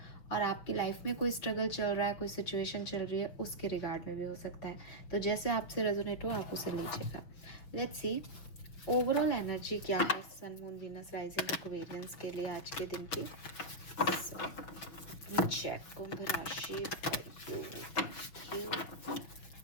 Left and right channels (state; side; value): late; right; 6.1 ms